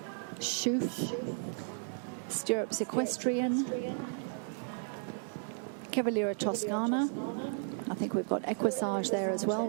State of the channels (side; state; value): left; silent; digital silence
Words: Schoof, Stirrups Equestrian, Cavaliera Toscana. I think we've got Equisage there as well.